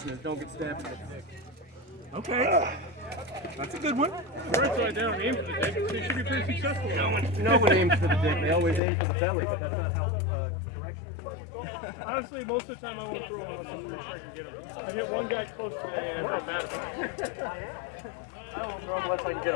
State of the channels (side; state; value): right; drops out; at 8.8 s